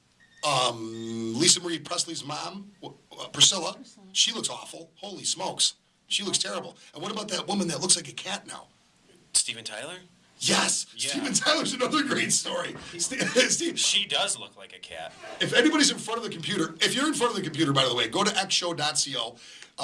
Lisa Marie Presley's mom, Priscilla, she looks awful. Holy smokes. She looks terrible. And what about that woman that looks like a cat now? Steven Tyler? Yes, yeah. Steven Tyler's another great story. She does look like a cat. If anybody's in front of the computer, if you're in front of the computer, by the way, go to xshow.co.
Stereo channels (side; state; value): both; identical; correlation 1.00